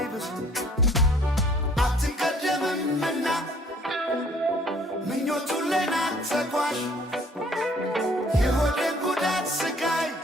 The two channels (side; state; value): both; normal; correlation 0.58